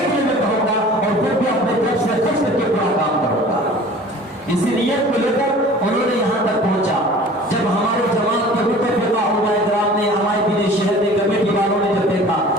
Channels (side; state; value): both; normal; correlation 0.45